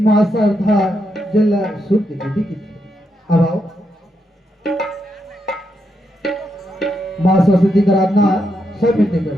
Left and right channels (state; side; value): normal; both; correlation 0.81